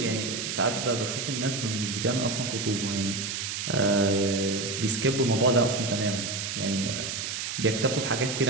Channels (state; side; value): noise; right; hiss, 4 dB below the sound